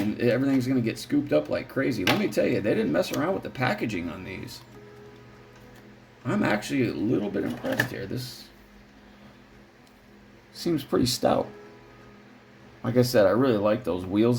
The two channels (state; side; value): identical; both; correlation 1.00